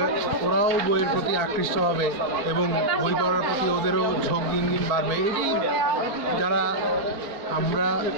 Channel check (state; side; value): late; left; 4.4 ms